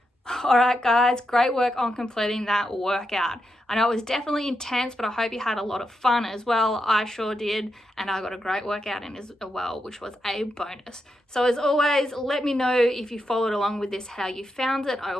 All right, guys, great work on completing that workout. I know it was definitely intense, but I hope you had a lot of fun as well. I sure did, and I got a great workout in as well, which was a bonus. So as always, let me know if you followed along with this, how you found it. I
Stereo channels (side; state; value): both; normal; correlation 0.85